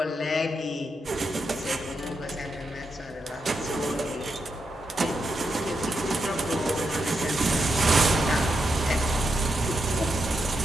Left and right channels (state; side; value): normal; both; correlation 0.84